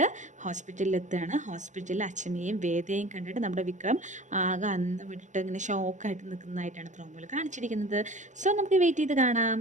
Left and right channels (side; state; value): left; late; 0.35 ms